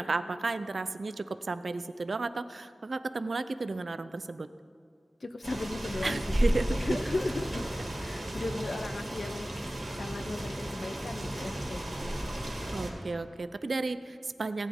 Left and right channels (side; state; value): both; normal; correlation 0.96